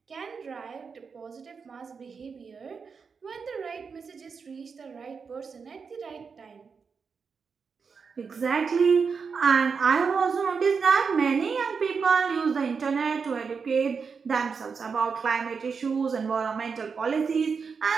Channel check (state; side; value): quieter; left; 5.6 dB